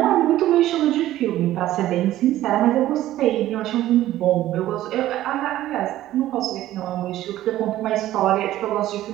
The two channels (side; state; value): left; quieter; 14.2 dB